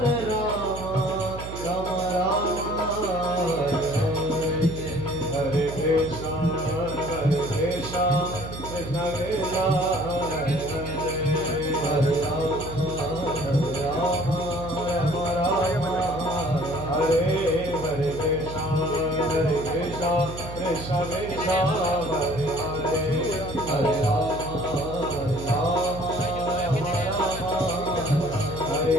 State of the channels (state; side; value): noise; right; hum, 10 dB below the sound